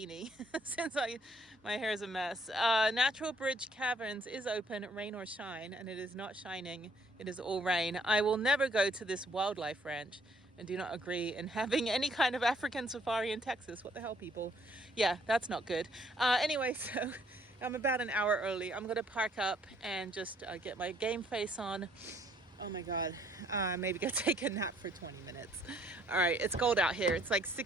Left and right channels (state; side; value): normal; both; correlation 0.64